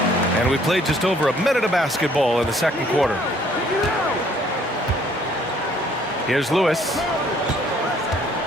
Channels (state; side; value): normal; both; correlation 0.61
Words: And we played just over a minute of basketball in the second quarter. Here's Lewis.